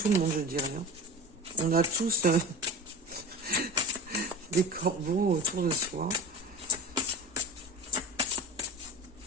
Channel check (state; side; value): normal; both; correlation 0.34